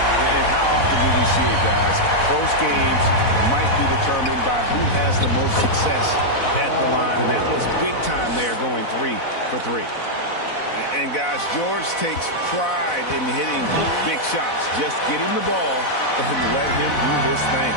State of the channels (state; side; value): late; right; 4.0 ms